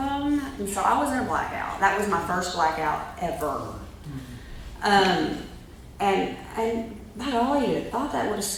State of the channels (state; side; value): identical; both; correlation 1.00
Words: And so I was in a blackout. That was my first blackout ever. And by golly, you'd thought that would have